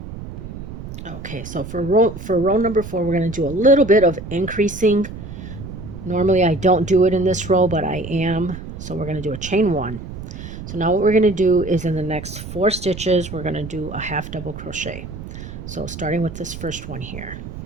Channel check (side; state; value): right; noise; rumble, 11 dB below the sound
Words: Okay, so for row number 4, we're going to do a little bit of increasing. Normally I don't do it in this row, but I am. So we're going to do a chain 1. So now what we're going to do is in the next 4 stitches, we're going to do a half double crochet. So starting with this first one here.